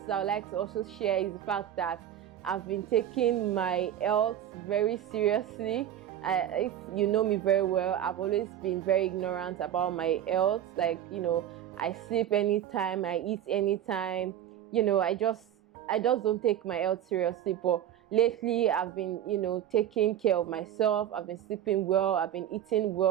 that I would like to also share is the fact that I've been taking my health very seriously. If you know me very well, I've always been very ignorant about my health. Like I sleep anytime, I eat anytime. I just don't take my health seriously. But lately I've been taking care of myself. I've been sleeping well, I've been eating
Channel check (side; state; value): left; quieter; 10.9 dB